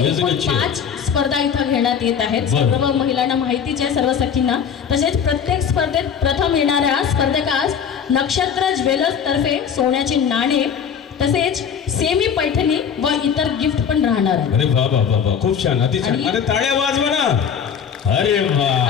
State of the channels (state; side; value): quieter; right; 7.4 dB